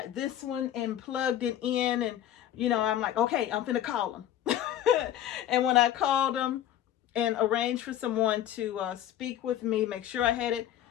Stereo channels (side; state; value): right; quieter; 11.4 dB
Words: this one and plugged it in, and I'm like, okay, I'm finna call them. And when I called them and arranged for someone to speak with me, make sure I had it.